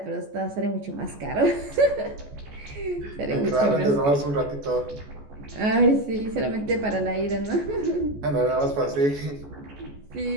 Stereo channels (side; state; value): left; late; 14 ms